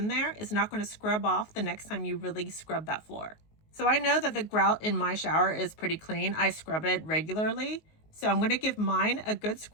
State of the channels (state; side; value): late; right; 19 ms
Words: there is not going to scrub off the next time you really scrub that floor. So I know that the grout in my shower is pretty clean. I scrub it regularly. So I'm going to give mine a good